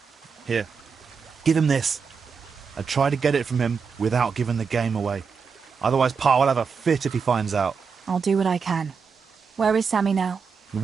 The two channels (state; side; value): quieter; left; 5.7 dB